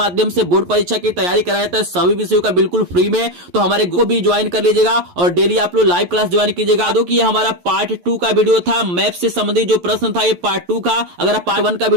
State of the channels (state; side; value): late; left; 11 ms